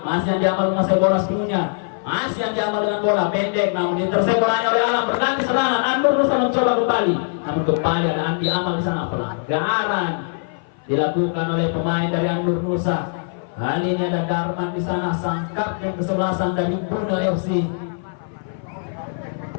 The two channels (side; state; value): right; silent; 56 dB below the other